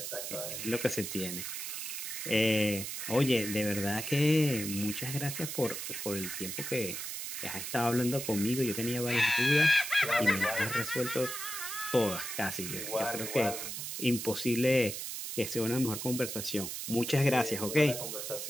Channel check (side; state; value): right; noise; hiss, 5 dB below the sound